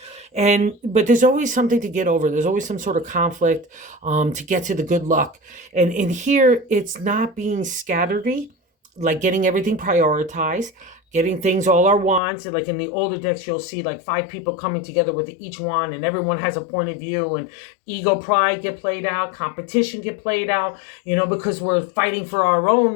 But there's always something to get over. There's always some sort of conflict to get to the good luck. And in here, it's not being scatteredy, like getting everything prioritized, getting things, all our wands. Like in the older decks, you'll see like 5 people coming together with each wand, and everyone has a point of view, and ego, pride get played out, competition get played out, because we're fighting for our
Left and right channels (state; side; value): drops out; right; at 12.2 s